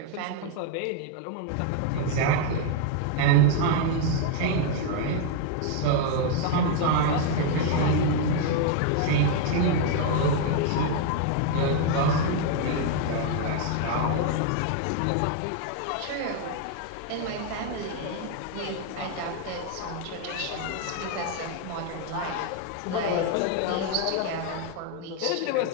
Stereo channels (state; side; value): different; both; correlation 0.00